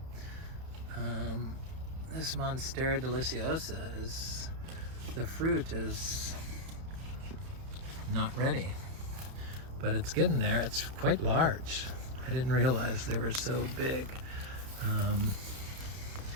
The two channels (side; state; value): left; late; 31 ms